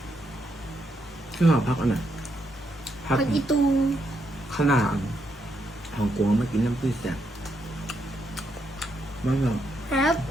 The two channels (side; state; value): both; normal; correlation 0.79